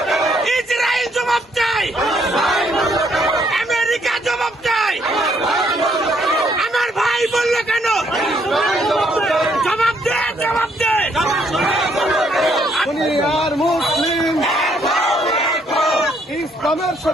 ইসরায়েল জবাব চাই, আমেরিকা জবাব চাই। আমার ভাই বলল কেন? জবাব দে, জবাব দে। দুনিয়ার মুসলিম ইসলামের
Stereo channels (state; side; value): normal; both; correlation 0.70